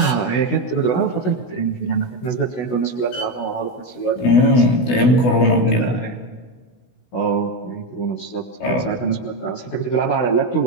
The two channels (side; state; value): right; late; 16 ms